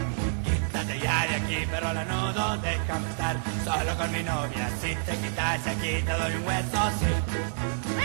Quítate ya de aquí, perro lanudo, déjame estar solo con mi novia. Si te quitas de aquí te doy un hueso, sí.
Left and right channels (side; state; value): left; silent; digital silence